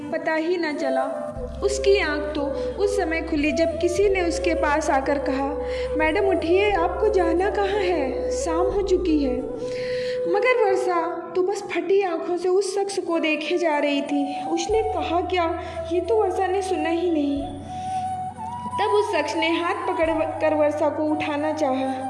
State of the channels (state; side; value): identical; both; correlation 1.00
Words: पता ही न चला। उसकी आंख तो उस समय खुली जब किसी ने उसके पास आकर कहा, मैडम उठिए, आपको जाना कहाँ है, शाम हो चुकी है। मगर वर्षा तो बस फटी आंखों से उस शख्स को देखे जा रही थी। उसने कहा क्या, ये तो वर्षा ने सुना ही नहीं। तब उस शख्स ने हाथ पकड़ कर वर्षा को उठाना चाहा।